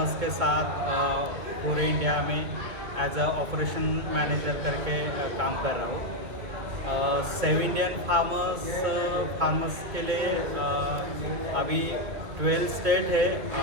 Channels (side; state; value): left; late; 2.5 ms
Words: के साथ पूरे इंडिया में एज अ ऑपरेशन मैनेजर करके काम कर रहा हूँ। सेव इंडियन फार्मर्स के लिए अभी 12 स्टेट है